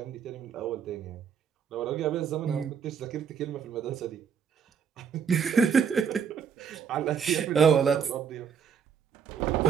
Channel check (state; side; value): quieter; left; 7.1 dB